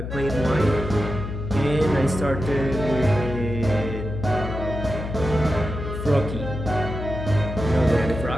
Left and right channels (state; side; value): noise; left; hum, 6 dB below the sound